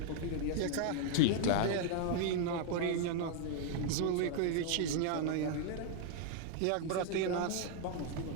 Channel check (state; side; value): different; both; correlation 0.00